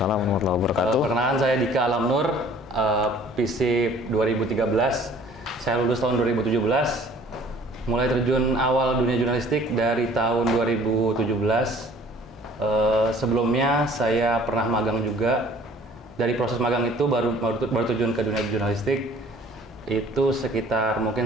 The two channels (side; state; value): both; normal; correlation 0.52